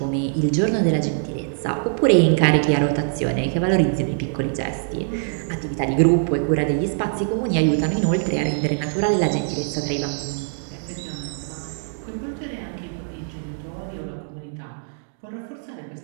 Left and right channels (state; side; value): silent; left; digital silence